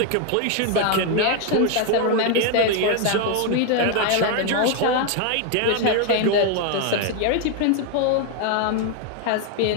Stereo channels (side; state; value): both; different; correlation 0.01